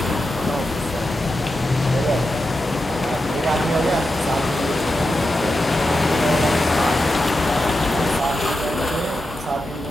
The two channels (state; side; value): normal; both; correlation 0.89